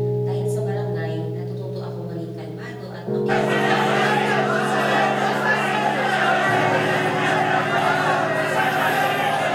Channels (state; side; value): identical; both; correlation 1.00